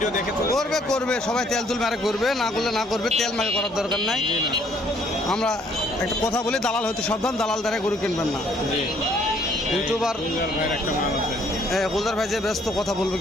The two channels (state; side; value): normal; both; correlation 0.64